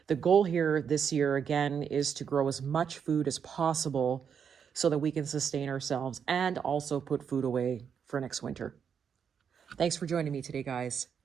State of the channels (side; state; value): left; quieter; 7.3 dB